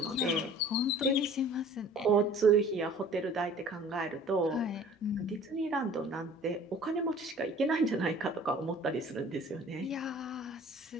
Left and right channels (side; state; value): both; normal; correlation 0.48